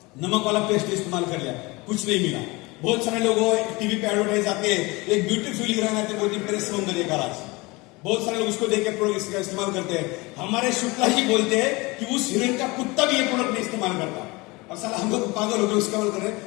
नमक वाला पेस्ट इस्तेमाल कर लिया, कुछ नहीं मिला। बहुत सारे लोगों टीवी पे एडवर्टाइज आते हैं, एक ब्यूटीफुल हीरोइन आते हैं, बोलती मेरे सौंदर्य का राज। बहुत सारे लोग उसको देख के प्रोडक्ट का इस्तेमाल करते हैं। हमारे शुक्ला जी बोलते हैं कि उस हीरोइन का कुत्ता भी ये प्रोडक्ट नहीं इस्तेमाल करता, और साला हम लोग पागल होकर इस्तेमाल कर रहे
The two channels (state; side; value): quieter; right; 24.1 dB